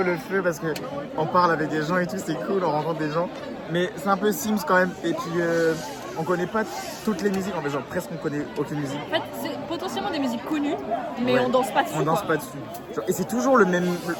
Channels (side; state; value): both; identical; correlation 1.00